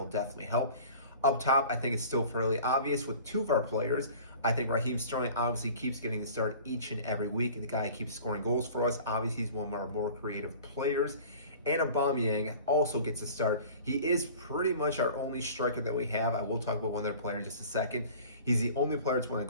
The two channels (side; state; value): both; inverted; correlation -0.43